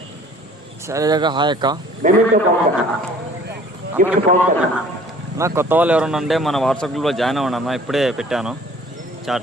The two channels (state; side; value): normal; both; correlation 0.52